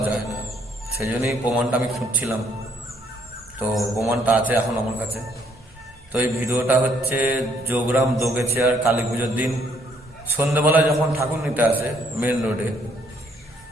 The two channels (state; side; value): normal; both; correlation 0.67